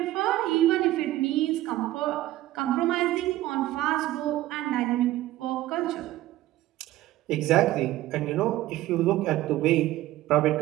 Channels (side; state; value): left; quieter; 15.6 dB